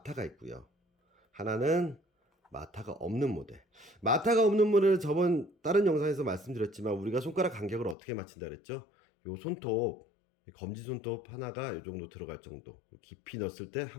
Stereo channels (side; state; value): right; drops out; at 8.0 s